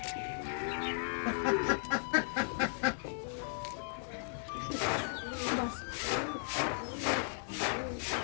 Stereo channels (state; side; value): silent; right; digital silence